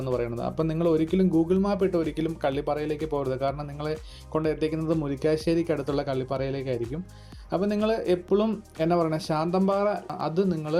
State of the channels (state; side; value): identical; both; correlation 1.00